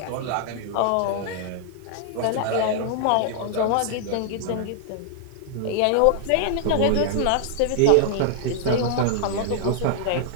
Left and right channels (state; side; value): different; both; correlation -0.01